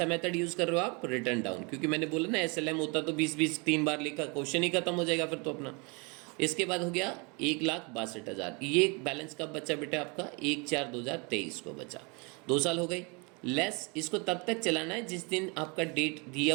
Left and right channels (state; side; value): quieter; left; 30.8 dB